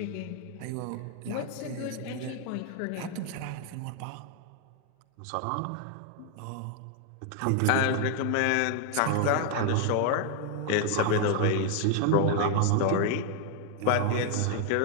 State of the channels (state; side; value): different; both; correlation 0.00